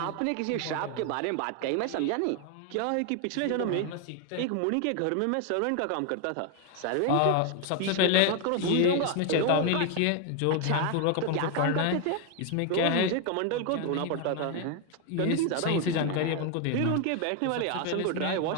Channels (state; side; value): different; both; correlation 0.01